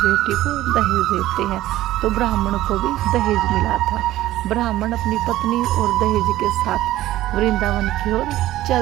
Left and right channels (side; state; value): left; quieter; 15.0 dB